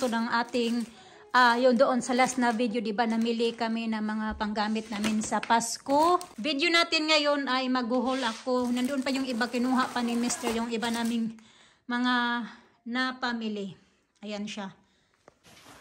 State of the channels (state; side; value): identical; both; correlation 1.00